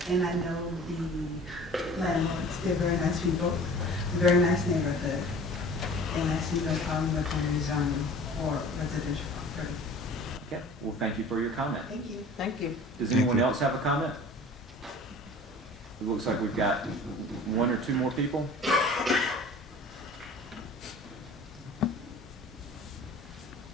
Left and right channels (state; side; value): normal; both; correlation 0.44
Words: and I know the landlords. They're very nice people, very nice neighborhood, and I see no problem with the rezoning or residential property. Okay. Well, thank you for your comment. Thank you. Thank you. Does anyone else have a comment? It looks like we've got 1 or 2 more people.